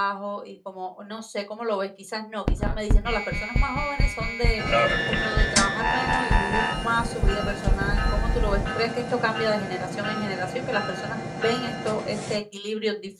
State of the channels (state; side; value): identical; both; correlation 1.00